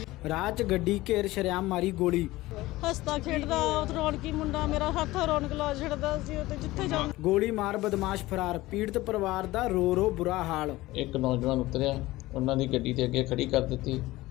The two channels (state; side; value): quieter; right; 18.3 dB